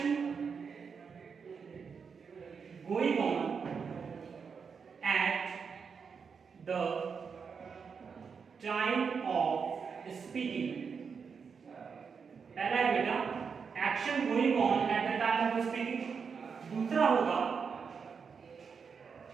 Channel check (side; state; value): left; quieter; 5.9 dB